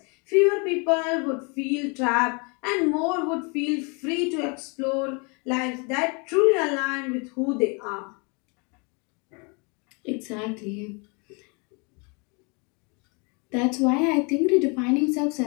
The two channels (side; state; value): right; quieter; 32.3 dB